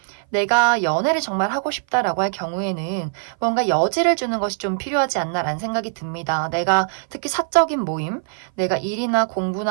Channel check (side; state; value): left; silent; 57 dB below the other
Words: 내가 연애를 정말 하고 싶다라고 할 경우에는 뭔가 여지를 주는 것이 좀 필요하지 않나라는 생각이 듭니다. 내가 특히 사적인 모임, 내가 일이나